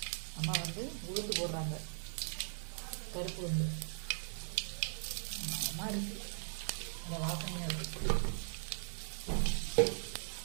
அம்மா வந்து உளுந்து போடுறாங்க. பருப்பு வந்து அம்மா இருக்குது. அந்த வாசனையாக இருக்குது.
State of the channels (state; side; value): silent; left; 52 dB below the other